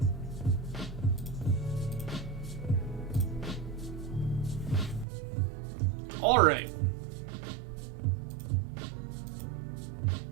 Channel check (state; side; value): drops out; left; at 5.1 s